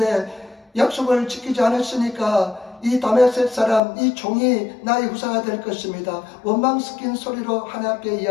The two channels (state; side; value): drops out; right; at 3.8 s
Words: 약속을 지키지 않았으니까 이 다메섹 사람, 이 종이 나의 후사가 될 것입니다. 원망 섞인 소리로 하나님 앞에